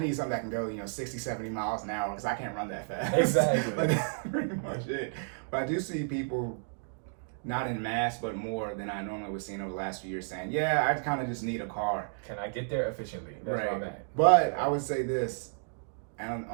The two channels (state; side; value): silent; left; digital silence